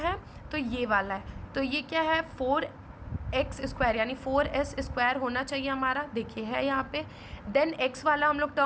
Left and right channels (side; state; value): both; identical; correlation 1.00